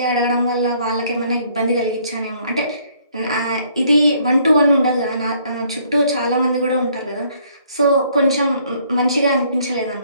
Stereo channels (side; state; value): both; inverted; correlation -0.64